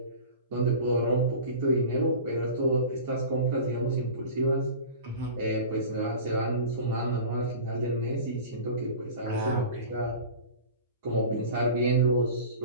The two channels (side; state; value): both; inverted; correlation -0.36